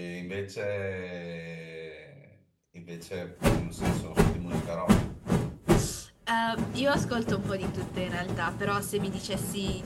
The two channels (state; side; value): identical; both; correlation 1.00